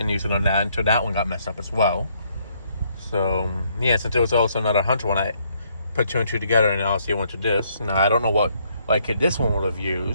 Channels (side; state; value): both; inverted; correlation -0.70